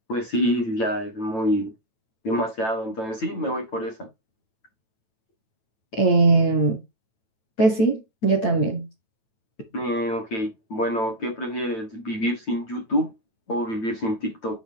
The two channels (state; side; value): late; right; 9.0 ms